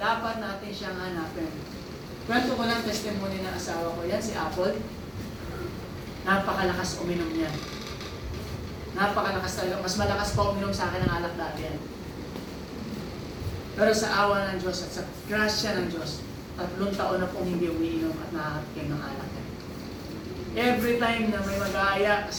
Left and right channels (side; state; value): both; identical; correlation 1.00